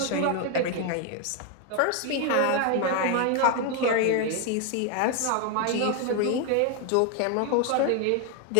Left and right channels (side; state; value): both; different; correlation 0.01